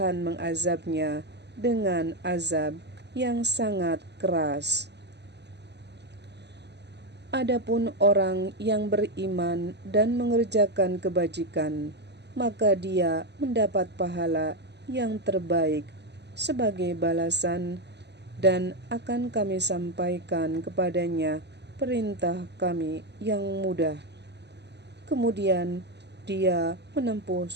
mengazabnya dengan azab yang sangat keras. Adapun orang yang beriman dan mengerjakan kebajikan, maka dia mendapat pahala yang terbaik sebagai balasan, dan akan kami sampaikan kepadanya perintah kami yang mudah. Kemudian dia menempuh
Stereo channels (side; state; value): left; late; 0.50 ms